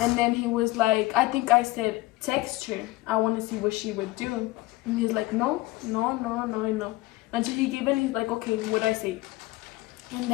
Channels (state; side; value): quieter; right; 19.5 dB